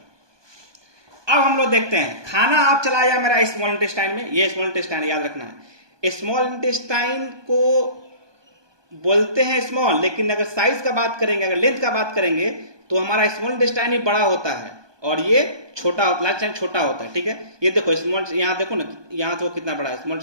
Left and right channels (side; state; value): left; late; 1.2 ms